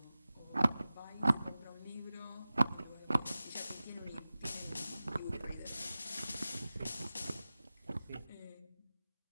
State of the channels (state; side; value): inverted; both; correlation -0.96